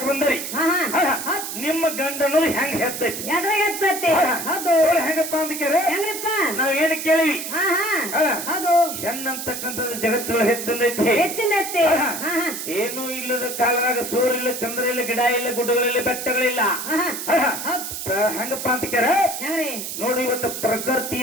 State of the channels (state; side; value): noise; right; hiss, 6 dB below the sound